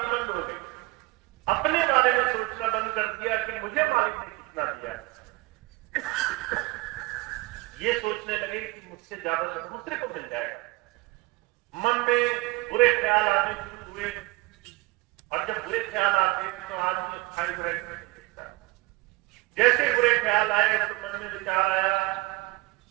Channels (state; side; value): quieter; left; 23.0 dB